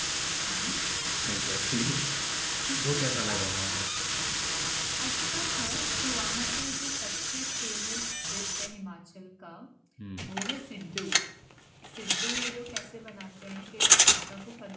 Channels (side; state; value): both; identical; correlation 1.00